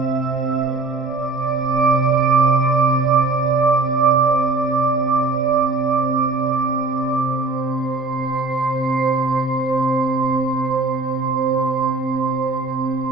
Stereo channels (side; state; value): left; quieter; 3.6 dB